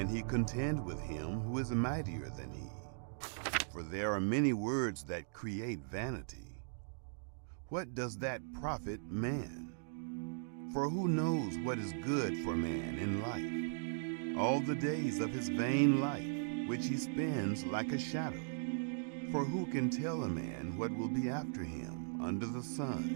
he contend with him who is mightier than he. For for there are many words that create vanity. What does that profit man? For who knows what is good for man in life, all the days of his vain life, which he spends like a shadow? For who can tell a man what will be after him under the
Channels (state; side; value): silent; left; digital silence